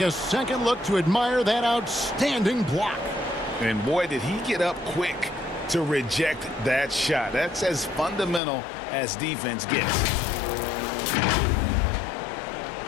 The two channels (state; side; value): drops out; right; at 8.4 s